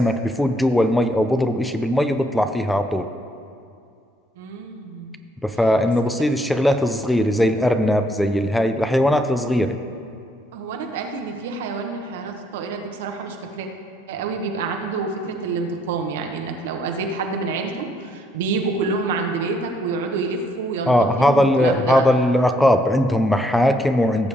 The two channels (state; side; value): normal; both; correlation 0.70